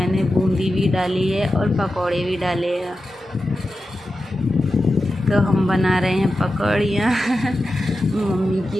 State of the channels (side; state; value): both; normal; correlation 0.92